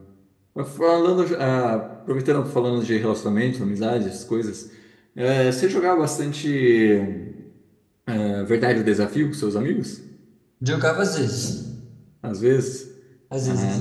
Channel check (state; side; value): identical; both; correlation 1.00